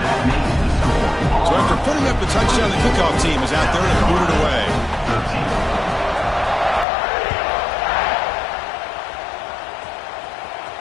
So after putting up the touchdown, the kickoff team is out there to boot it away.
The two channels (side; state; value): right; drops out; at 6.9 s